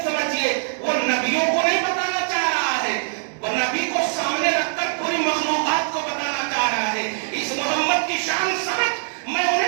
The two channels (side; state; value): left; silent; digital silence